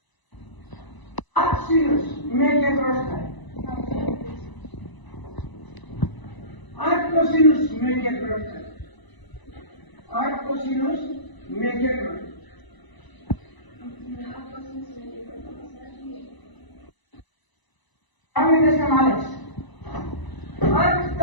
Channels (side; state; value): right; late; 1.0 ms